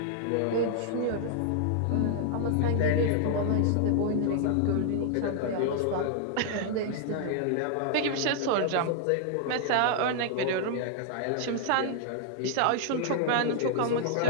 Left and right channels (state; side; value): different; both; correlation 0.00